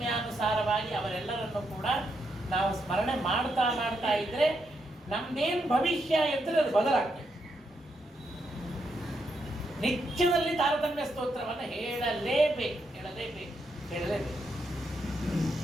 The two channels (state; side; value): normal; both; correlation 0.80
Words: ಅವರೆಲ್ಲರನ್ನು ಕೂಡ ನಾವು ಸ್ಮರಣೆ ಮಾಡ್ತಾ ಮಾಡ್ತಾ ಇದ್ರೆ ನಮ್ದೇನು ಭವಿಷ್ಯ ಇರ್ತದೆ ಅದು ಬದಲಾಗ್ತದೆ. ನಿತ್ಯದಲ್ಲಿ ತಾರತಮ್ಯ ಸ್ತೋತ್ರವನ್ನು ಹೇಳಲೇಬೇಕು.